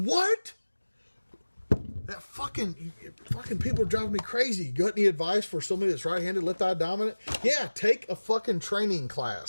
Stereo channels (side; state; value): both; inverted; correlation -1.00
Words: That fucking people are driving me crazy. You got any advice for somebody that's right-handed, left-eye dominant? Yeah, take a fucking training